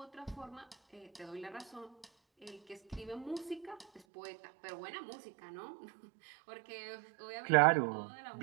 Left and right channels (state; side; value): drops out; left; at 4.0 s